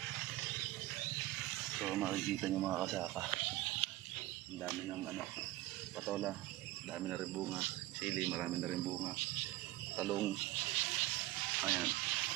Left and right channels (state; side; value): quieter; left; 17.4 dB